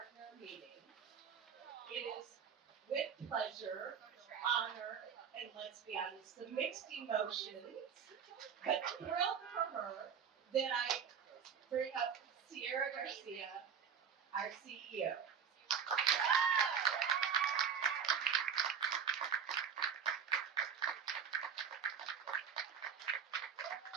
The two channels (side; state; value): left; quieter; 7.3 dB